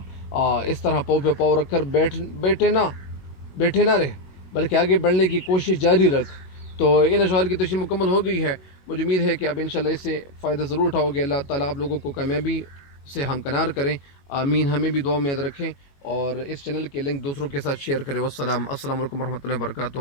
اس طرح پاؤ پہ پاؤ رکھ کر بیٹھے نہ رہے، بلکہ آگے بڑھنے کی کوشش جاری رکھ۔ تو ان اشعار کی تشریح مکمل ہو گئی ہے، مجھے امید ہے کہ اب انشاءاللہ اس سے فائدہ ضرور اٹھاؤ گے۔ اللہ تعالیٰ آپ لوگوں کو کامیابی سے ہمکنار کریں، آمین۔ ہمیں بھی دعا میں یاد رکھیں اور اس چینل کے لنک دوسروں کے ساتھ شیئر کریں۔ السلام علیکم ورحمۃ اللہ وبرکاتہ۔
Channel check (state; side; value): late; right; 21 ms